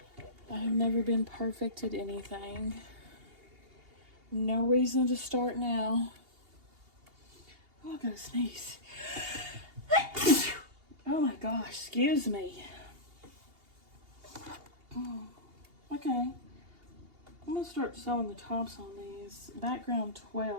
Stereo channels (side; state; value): left; late; 2.8 ms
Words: I have never been perfect at anything. No reason to start now. Oh, I gotta sneeze. Oh my gosh, excuse me. Okay, I'm gonna start sewing the tops on these. Background